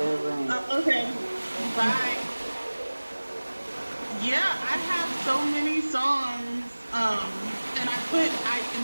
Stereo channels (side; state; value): both; inverted; correlation -1.00